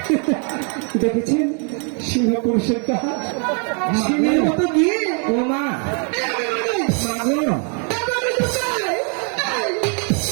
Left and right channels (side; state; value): left; quieter; 40.0 dB